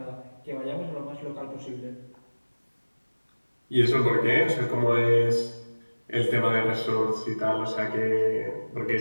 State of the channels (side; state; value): both; inverted; correlation -1.00